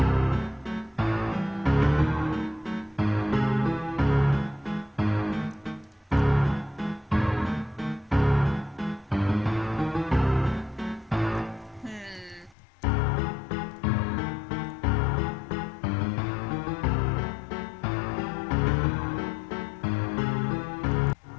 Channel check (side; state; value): right; drops out; at 12.6 s